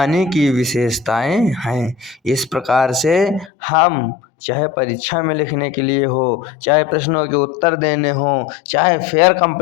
की विशेषताएं हैं। इस प्रकार से हम चाहे परीक्षा में लिखने के लिए हो, चाहे प्रश्नों के उत्तर देने हो, चाहे फेयर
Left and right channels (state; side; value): drops out; right; at 3.5 s